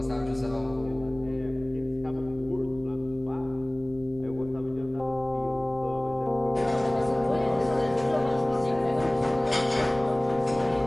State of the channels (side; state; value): right; noise; rumble, 18 dB below the sound